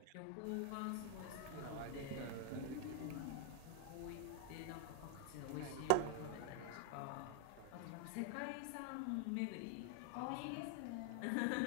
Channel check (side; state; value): both; different; correlation 0.00